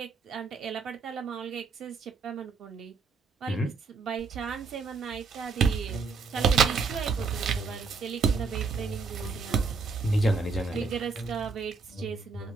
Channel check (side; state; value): left; quieter; 4.8 dB